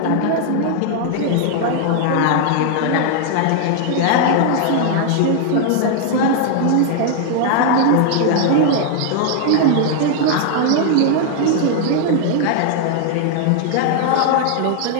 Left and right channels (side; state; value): both; different; correlation 0.00